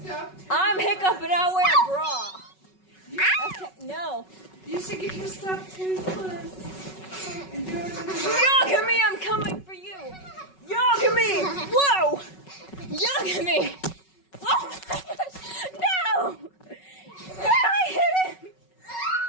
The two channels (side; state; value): right; late; 5.4 ms